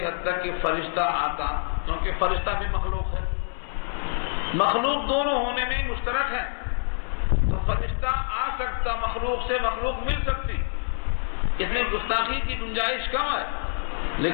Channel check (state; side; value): silent; right; 61 dB below the other